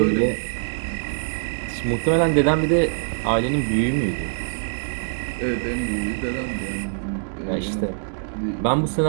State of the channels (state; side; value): silent; left; 63 dB below the other